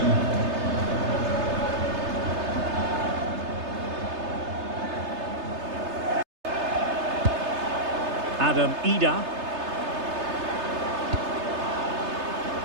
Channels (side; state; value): left; late; 3.3 ms